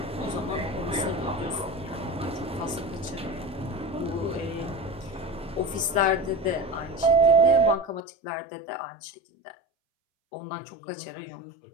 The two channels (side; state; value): right; drops out; at 8.0 s